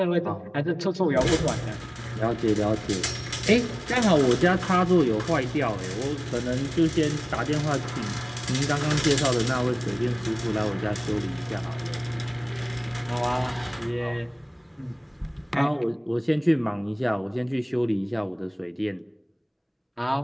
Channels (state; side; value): identical; both; correlation 1.00